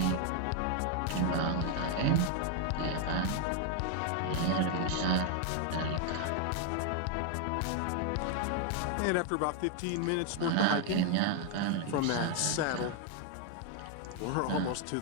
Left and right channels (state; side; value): different; both; correlation 0.00